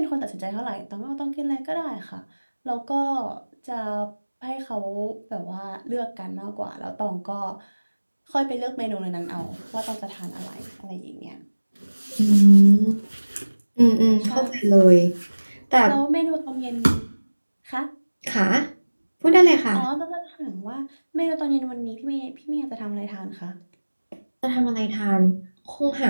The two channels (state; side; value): inverted; both; correlation -1.00